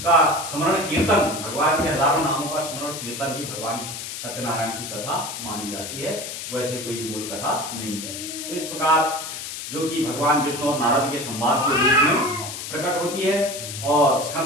का स्मरण कीर्तन, भगवान के हजारों नामों का स्मरण कीर्तन ही भगवान सत्यनारायण की कथा मानी जाती है, वैसे कोई मूल कथा नहीं है। तो इस प्रकार जो कि भगवान विष्णु और नारद के संवाद के रूप में प्रकट होती है और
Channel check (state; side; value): noise; left; hiss, 8 dB below the sound